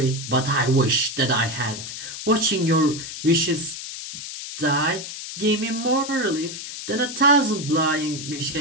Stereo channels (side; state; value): left; noise; hiss, 9 dB below the sound